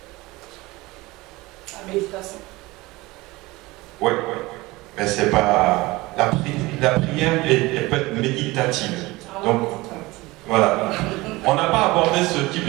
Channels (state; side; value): quieter; left; 21.1 dB